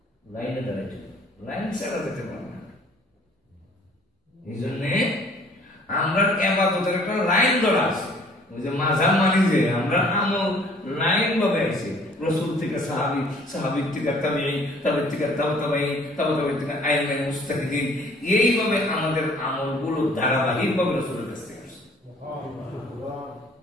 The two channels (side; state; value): both; normal; correlation 0.56